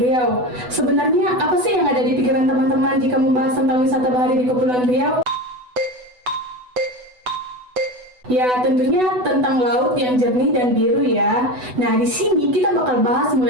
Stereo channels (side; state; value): left; late; 8.0 ms